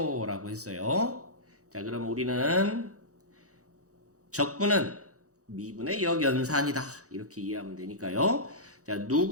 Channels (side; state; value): left; late; 0.66 ms